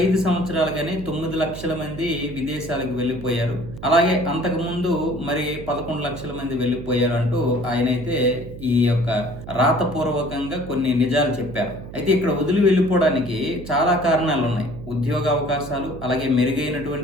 సంవత్సరాలుగానే 9 లక్షల మంది విదేశాలకు వెళ్ళిపోయారు. అలాగే అంతకు ముందు మరి 11 లక్షల మంది వెళ్ళిపోయారు అంటూ ఆయనైతే ఈ యొక్క రాతపూర్వకంగా కొన్ని నిజాలు చెప్పారు. అయితే ఇక్కడ వదిలి వెళ్ళిపోవడానికి చాలా కారణాలు ఉన్నాయి. ఉద్యోగ అవకాశాలు, అలాగే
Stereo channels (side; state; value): right; noise; hum, 12 dB below the sound